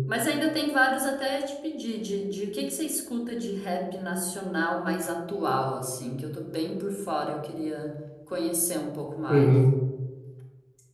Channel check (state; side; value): identical; both; correlation 1.00